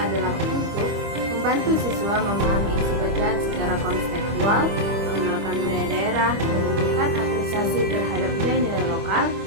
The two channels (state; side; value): late; left; 25 ms